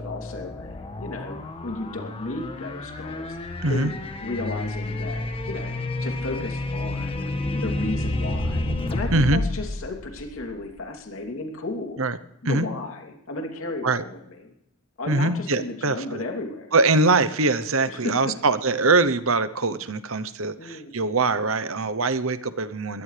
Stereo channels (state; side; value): normal; both; correlation 0.15